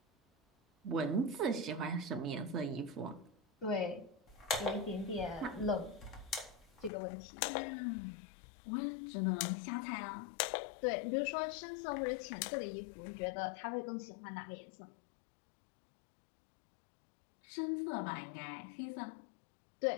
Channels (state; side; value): drops out; right; at 6.9 s